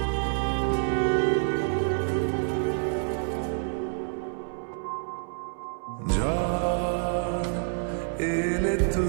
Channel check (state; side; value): silent; left; 60 dB below the other